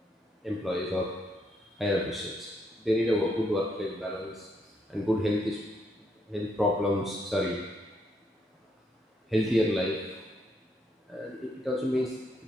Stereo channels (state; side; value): normal; both; correlation 0.75